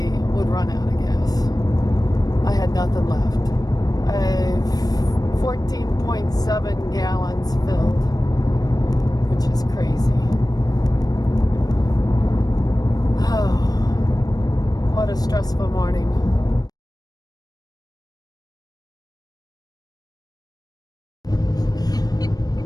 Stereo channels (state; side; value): late; right; 0.19 ms